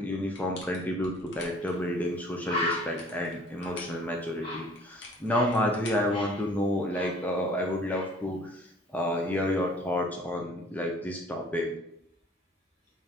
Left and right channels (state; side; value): normal; both; correlation 0.52